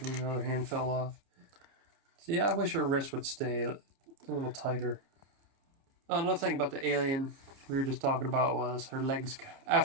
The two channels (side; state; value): left; late; 29 ms